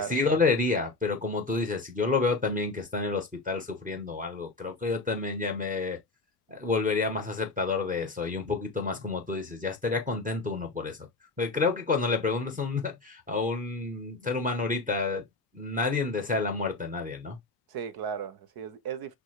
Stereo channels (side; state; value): right; quieter; 3.3 dB